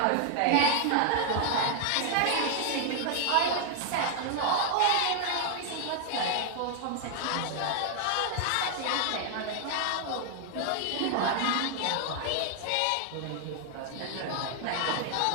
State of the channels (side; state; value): both; different; correlation 0.00